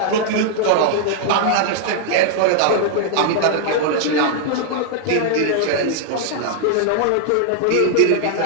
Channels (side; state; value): both; different; correlation 0.00